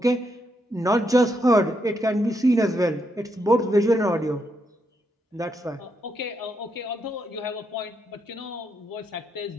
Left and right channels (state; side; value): normal; both; correlation 0.79